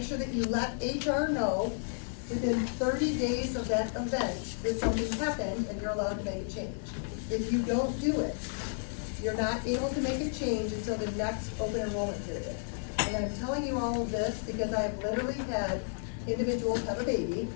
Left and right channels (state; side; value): silent; right; digital silence